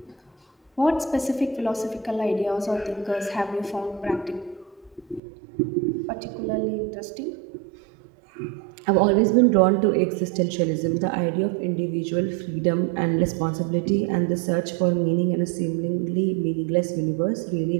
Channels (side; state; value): left; drops out; at 5.2 s